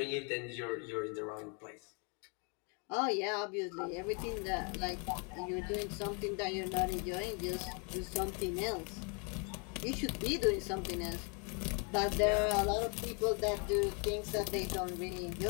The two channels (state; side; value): quieter; right; 36.4 dB